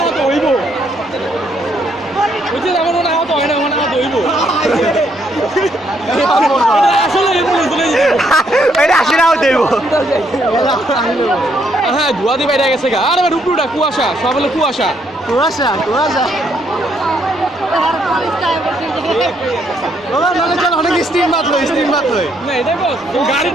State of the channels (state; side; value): normal; both; correlation 0.72